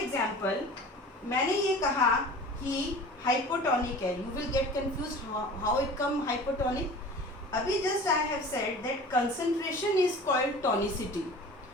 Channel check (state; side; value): normal; both; correlation 0.40